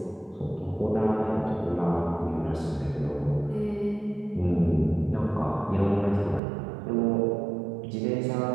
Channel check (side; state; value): left; drops out; at 6.4 s